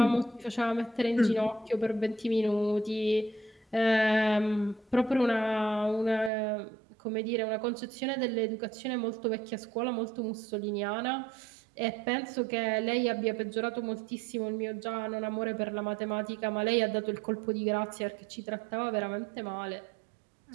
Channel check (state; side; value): drops out; left; at 6.3 s